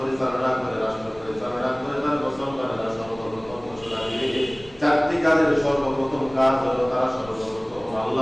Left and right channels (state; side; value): noise; left; rumble, 22 dB below the sound